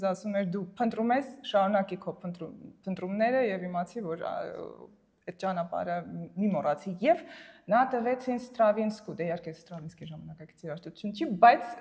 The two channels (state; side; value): identical; both; correlation 1.00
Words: ասում էր դու փնտրում ես, շարունակի քո փնտրումները եւ իմացի որ այդ ճանապարհը մի մոռացի եւ նա տվեց ինձ Ստրավինսկու, դե իհարկե Ստրավինսկի ժամանակակից երաժշտություն չի, բայց